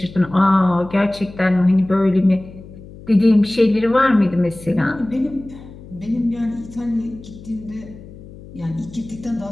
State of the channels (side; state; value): left; noise; hum, 18 dB below the sound